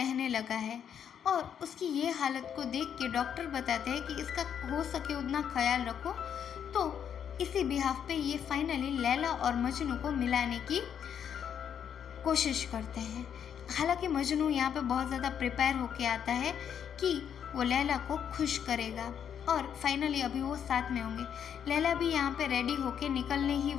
लगा है और उसकी ये हालत को देख के डॉक्टर बताते हैं कि इसका हो सके उतना ख्याल रखो। तो इसी बिहाफ पे ये फाइनली लैला और मजनू को मिलाने की कोशिश करते हैं। हालांकि मजनू यहाँ पे बहुत ज़्यादा प्रिपेयर होके आता है कि वो लैला को खुश करेगा और फाइनली अभी वो साथ में होंगे। लैला भी यहाँ पे रेडी होके निकलने ही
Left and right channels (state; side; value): quieter; right; 8.5 dB